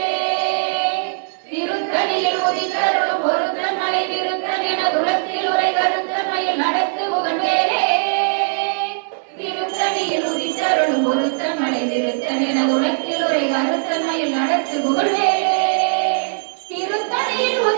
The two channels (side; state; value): left; silent; digital silence